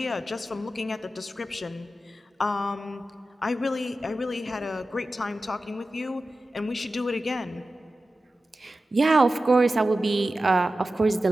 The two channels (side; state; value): both; normal; correlation 0.94